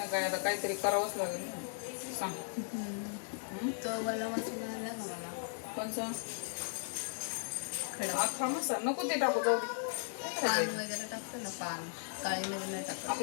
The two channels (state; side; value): silent; right; digital silence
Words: काय, आता काहीतरी करावंच लागेल ना. सांग. तो मला मसाला आला ना मला. कोणचा? खडा अख्खा मसाला नको, ते टाकू, जाऊ दे. पान वगैरे टाकतो ना, पान काळी मध्ये नाही टाकत.